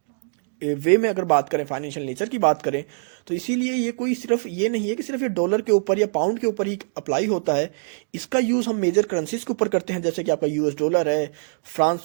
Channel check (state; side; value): silent; left; digital silence